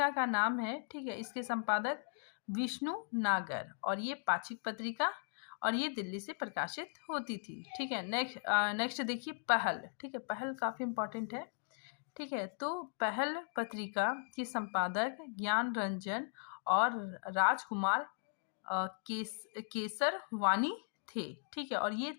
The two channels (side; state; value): right; silent; digital silence